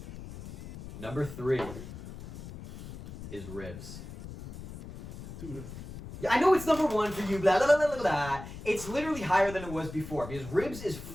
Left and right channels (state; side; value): noise; left; rumble, 12 dB below the sound